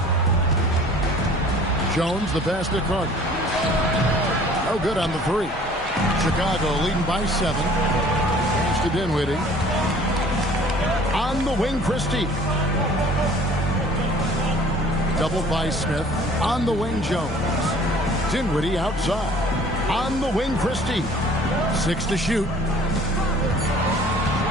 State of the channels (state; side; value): normal; both; correlation 0.51